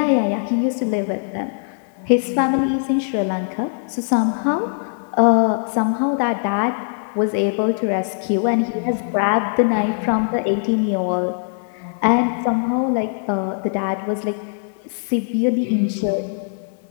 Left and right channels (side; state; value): right; silent; digital silence